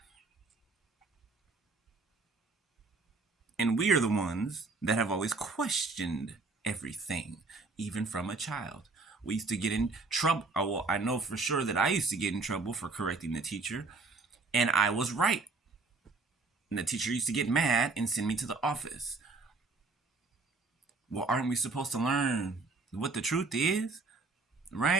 And we are the ones that have always questioned everything, even from a child. We used to get in trouble. Well, I know for sure that I used to get in trouble for correcting the teacher, and I was right. And the teacher used to get mad and send me to the office. Well, aren't we supposed to learn what the truth is?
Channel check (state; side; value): quieter; left; 3.9 dB